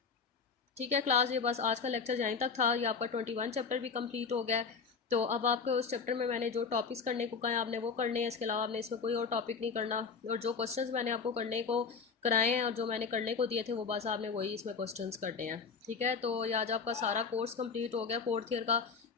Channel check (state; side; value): quieter; right; 5.4 dB